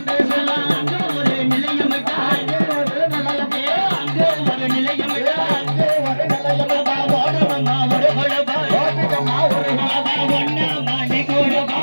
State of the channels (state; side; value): inverted; both; correlation -1.00